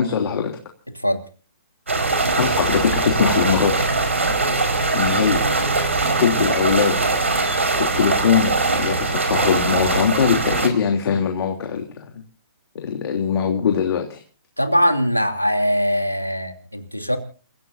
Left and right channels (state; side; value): inverted; both; correlation -0.51